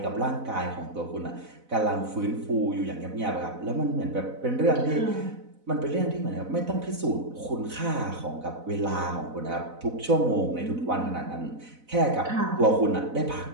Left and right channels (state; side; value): late; left; 4.0 ms